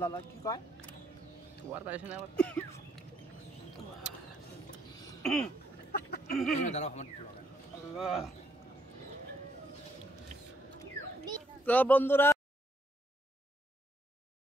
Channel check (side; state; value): both; normal; correlation 0.72